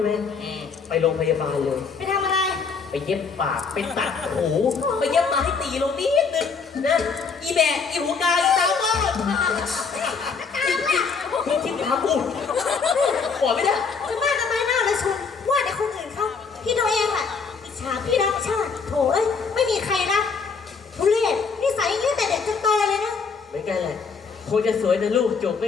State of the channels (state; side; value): quieter; right; 5.3 dB